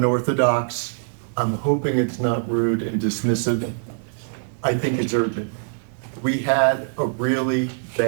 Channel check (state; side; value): silent; left; digital silence